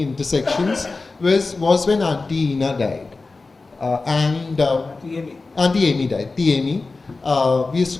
intersections was when Auntie Ina died. Auntie Amy died. Amy. We used to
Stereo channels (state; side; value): quieter; right; 3.7 dB